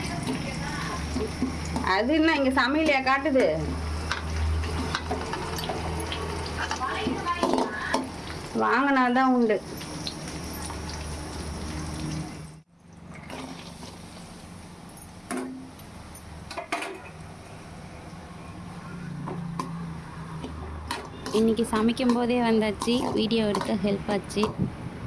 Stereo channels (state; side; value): identical; both; correlation 1.00